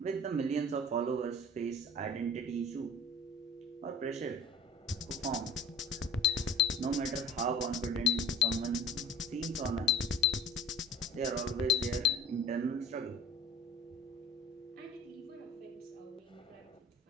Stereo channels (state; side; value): normal; both; correlation 0.44